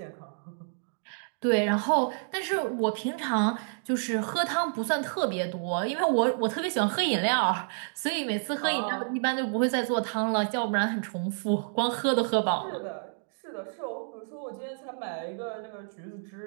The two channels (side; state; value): left; silent; digital silence